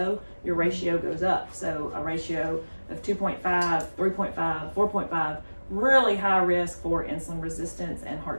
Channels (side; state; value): both; inverted; correlation -1.00